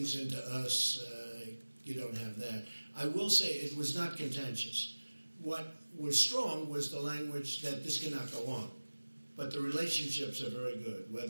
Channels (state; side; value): inverted; both; correlation -1.00